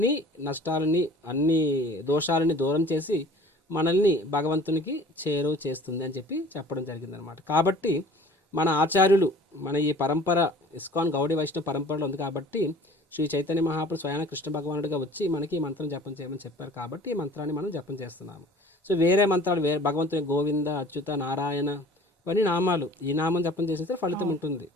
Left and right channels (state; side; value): normal; both; correlation 0.47